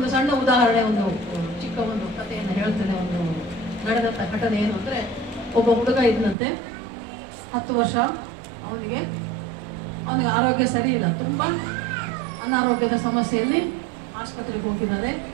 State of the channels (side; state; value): left; drops out; at 6.4 s